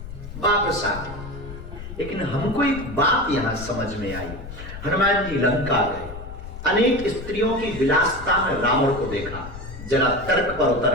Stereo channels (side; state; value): left; noise; rumble, 12 dB below the sound